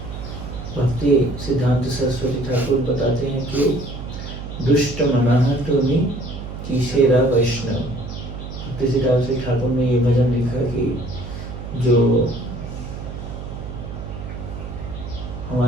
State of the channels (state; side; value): noise; right; hum, 9 dB below the sound